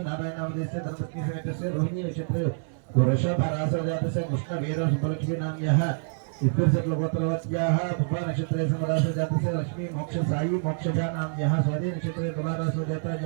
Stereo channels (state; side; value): silent; left; 60 dB below the other